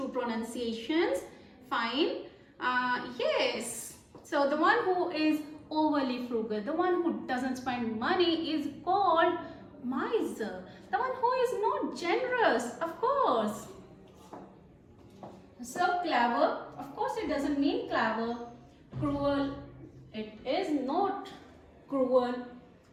pronunciations. Fine. Yes. So the one who is overly frugal, the one who doesn't spend money, is called miser. The one who is not generous, of course. So clever, of course it doesn't mean clever. Cruel, it is not cruel.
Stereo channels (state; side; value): identical; both; correlation 1.00